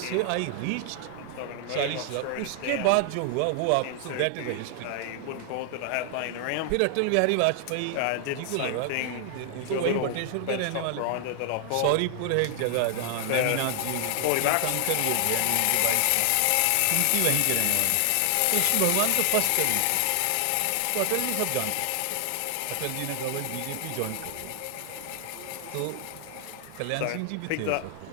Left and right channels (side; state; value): both; different; correlation 0.00